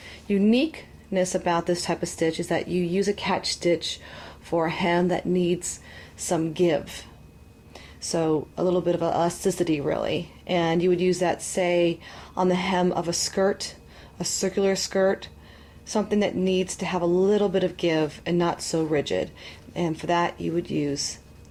uniqueness about this type of stitch is that you use a catch stitch for a hem that needs some give. So a little bit of elasticity really. And you would use that, say, on the hem of a skirt, a circular skirt, something that needs to have a little bit of give and not so rigid. And for that you would use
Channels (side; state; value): both; identical; correlation 1.00